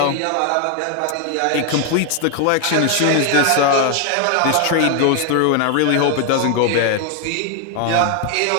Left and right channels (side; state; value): both; different; correlation 0.00